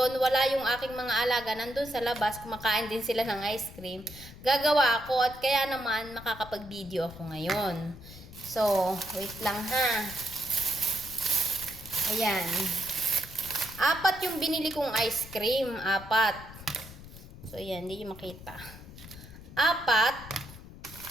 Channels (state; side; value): noise; left; rumble, 16 dB below the sound